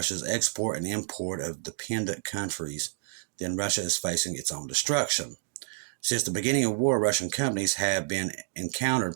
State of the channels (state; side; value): silent; left; digital silence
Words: export and import of dependent countries, then Russia is facing its own destruction. Since the beginning of war, Russian companies have